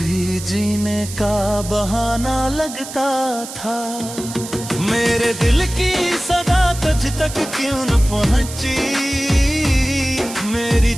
जीने का बहाना लगता था। मेरे दिल की सदा तुझ तक क्यों न पहुंची, मेरी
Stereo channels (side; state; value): right; noise; hiss, 11 dB below the sound